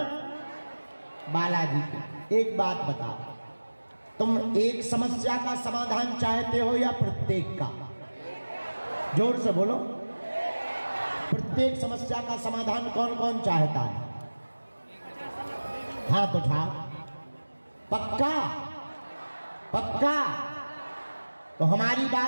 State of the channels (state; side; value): inverted; both; correlation -1.00